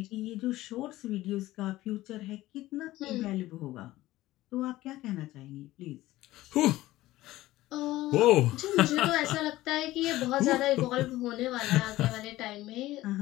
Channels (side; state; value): right; quieter; 16.7 dB